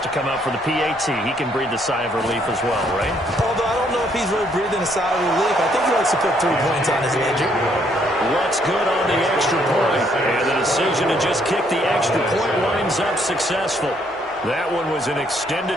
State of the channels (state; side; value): normal; both; correlation 0.69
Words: to come out for the PAT. He can breathe the sigh of relief as well, right? Although I don't know if he's really breathing a sigh of relief. I think he likes to put 3 points on his ledger. What's good on the extra point? And the decision to just kick the extra point winds up successful. That one was an